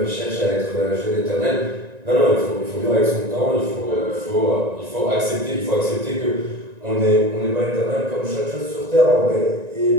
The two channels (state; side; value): late; left; 1.9 ms